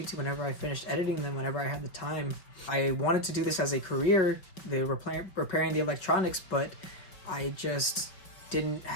whenever I finished editing them, whenever I had the time. I wanted to do this as a career, repairing the electronics, but I just didn't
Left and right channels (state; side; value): late; right; 5.2 ms